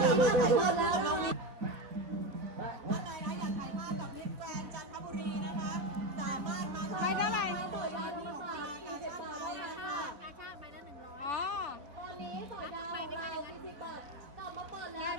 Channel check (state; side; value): late; left; 3.4 ms